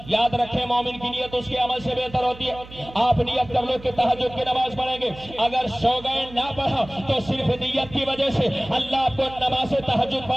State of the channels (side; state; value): right; noise; hum, 18 dB below the sound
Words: یاد رکھیں، مومن کی نیت اس کے عمل سے بہتر ہوتی ہے۔ آپ نیت کر لو کہ تہجد کی نماز پڑھیں گے، اگر سو گئے نہ پڑھا تو صرف نیت کی وجہ سے اللہ آپ کو نماز تہجد